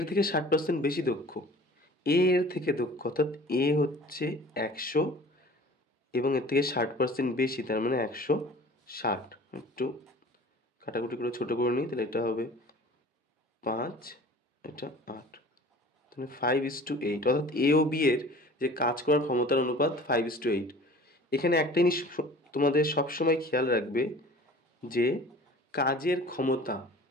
থেকে 60% বেশি দক্ষ, এ এর থেকে দক্ষ, অর্থাৎ এ হচ্ছে 100 এবং এর থেকে 60% বেশি, তার মানে 160। একটু কাটাকুটি করে ছোট করে নিই, তাহলে এটা হবে 5, এটা 8, তাহলে 5:8, অর্থাৎ এ ও বি এর যে কাজ করার ক্ষমতার অনুপাত 5:8। এখানে একটা জিনিস তোমাদের সবসময় খেয়াল রাখবে যে কাজের ক্ষমতা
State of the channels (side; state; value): both; normal; correlation 0.44